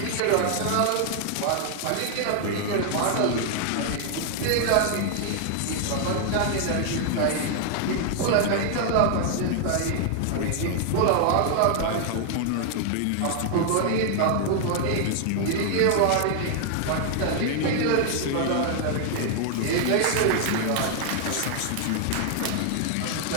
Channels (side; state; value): both; different; correlation 0.00